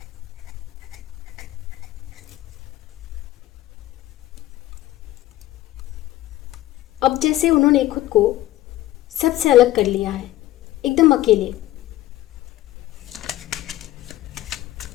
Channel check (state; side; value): quieter; right; 15.5 dB